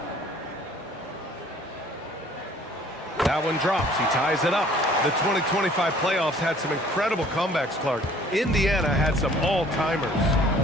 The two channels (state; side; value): normal; both; correlation 0.55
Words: That one drops. He ties it up. The 2025 playoffs had some incredible comebacks, Clark. Indiana had some all-timers.